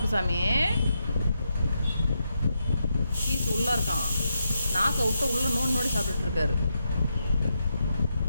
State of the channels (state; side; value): inverted; both; correlation -0.83